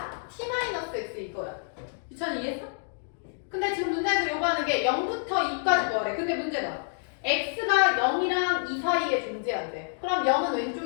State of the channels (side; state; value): right; silent; digital silence